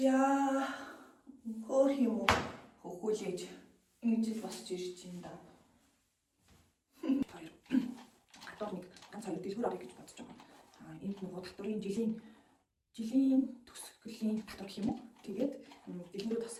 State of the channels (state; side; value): identical; both; correlation 1.00